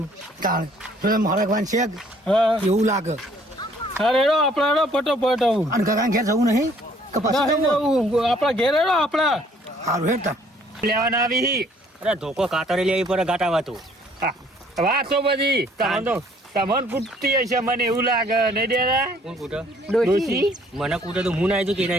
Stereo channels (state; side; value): normal; both; correlation 0.60